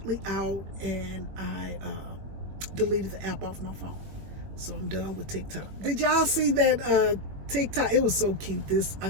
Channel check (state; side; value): late; left; 21 ms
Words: out, and I deleted the app off my phone. So I'm done with TikTok. Did y'all see that TikTok? It was so cute. I